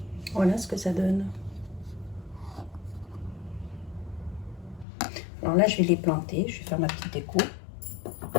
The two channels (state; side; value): drops out; right; at 4.9 s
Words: Voilà ce que ça donne. Alors là, je vais les planter. Je vais faire ma petite déco.